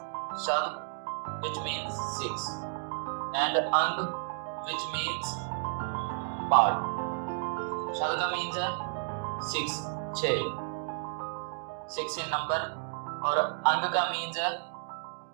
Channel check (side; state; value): left; silent; digital silence